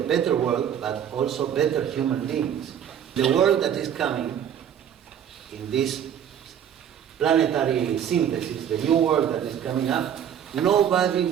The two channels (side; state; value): left; quieter; 9.2 dB